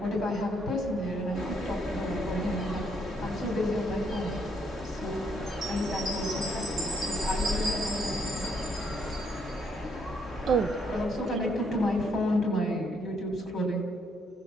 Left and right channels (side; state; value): both; normal; correlation 0.72